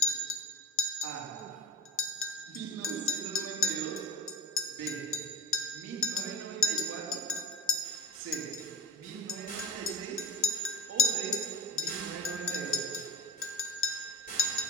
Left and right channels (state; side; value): normal; both; correlation 0.39